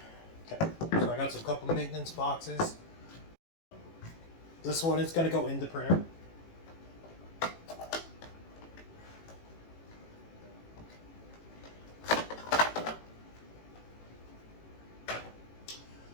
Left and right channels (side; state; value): right; late; 18 ms